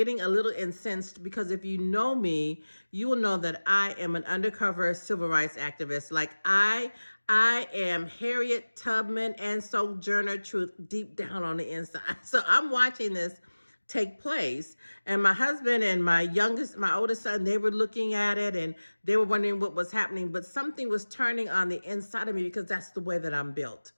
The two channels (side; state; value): both; inverted; correlation -1.00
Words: a little incensed because if you know me, you will know that I am an undercover civil rights activist. Like I am Harriet Tubman and Sojourner Truth deep down on the inside. So I'm watching this take place, and my husband and my oldest son, they were looking at it and they were wondering what was happening, but something was turning on the inside of me because that's the way that I'm built.